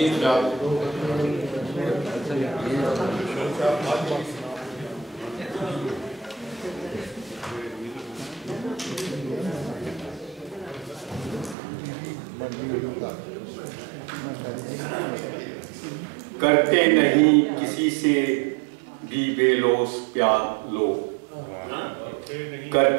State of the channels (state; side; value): drops out; left; at 11.6 s